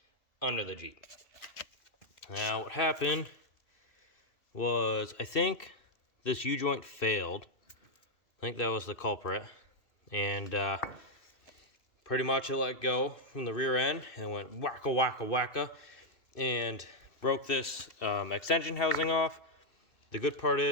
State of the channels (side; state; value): right; late; 2.6 ms